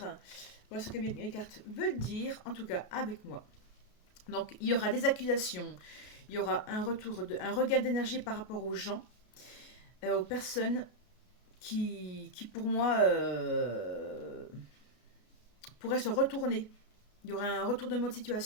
Voilà ce que mes cartes veulent dire, en tout cas avec moi. Donc il y aura des accusations, il y aura un regain d'énergie par rapport aux gens, aux personnes qui pour moi pourraient se retourner. Il y aura un retournement de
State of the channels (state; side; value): late; right; 33 ms